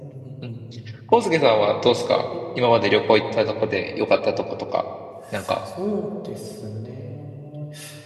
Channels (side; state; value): both; identical; correlation 1.00